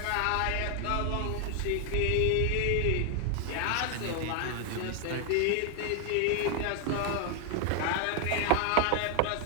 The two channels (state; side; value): different; both; correlation 0.00